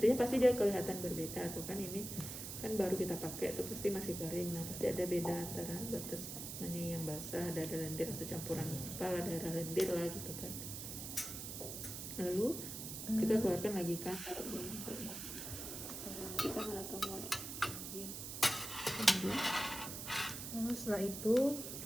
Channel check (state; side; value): noise; right; hiss, 7 dB below the sound